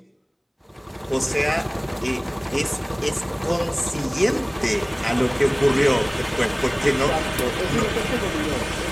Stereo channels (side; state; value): both; identical; correlation 1.00